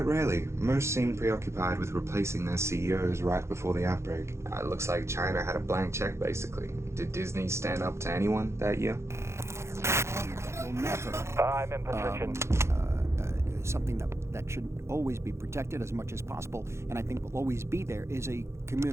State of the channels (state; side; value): late; left; 0.13 ms